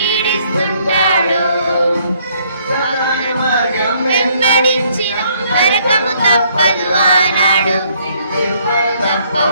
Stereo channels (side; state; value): both; inverted; correlation -0.66